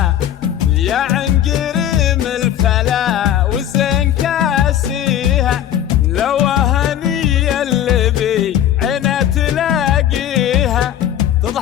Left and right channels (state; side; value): quieter; right; 10.9 dB